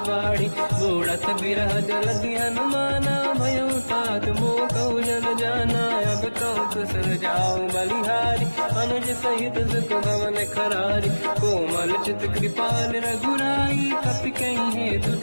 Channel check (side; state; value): both; inverted; correlation -1.00